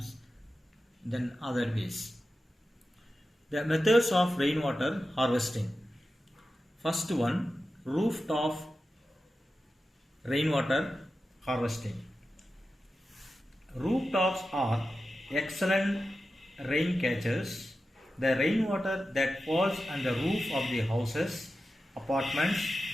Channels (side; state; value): both; normal; correlation 0.92